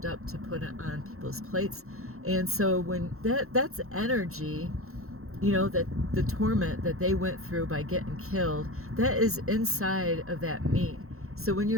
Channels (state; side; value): late; left; 0.63 ms